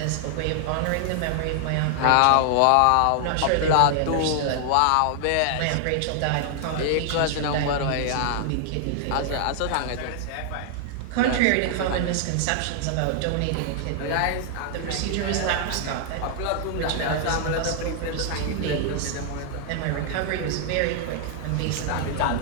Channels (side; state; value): both; different; correlation 0.00